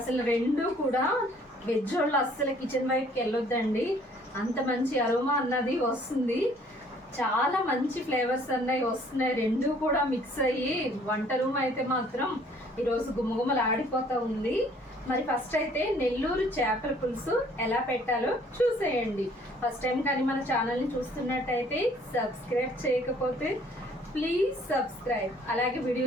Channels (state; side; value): normal; both; correlation 0.58